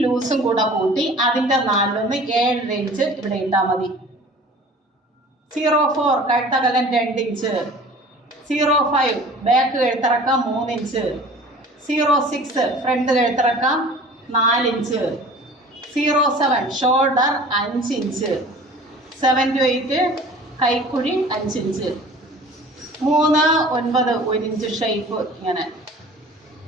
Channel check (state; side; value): normal; both; correlation 0.45